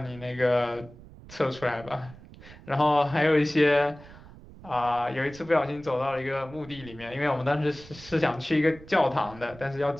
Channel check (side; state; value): right; noise; rumble, 19 dB below the sound